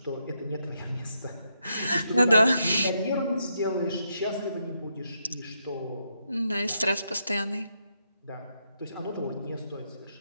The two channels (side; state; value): both; inverted; correlation -0.80